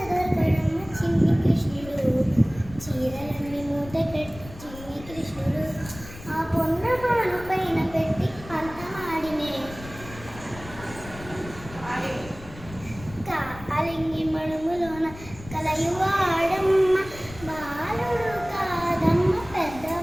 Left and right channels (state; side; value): noise; left; rumble, 16 dB below the sound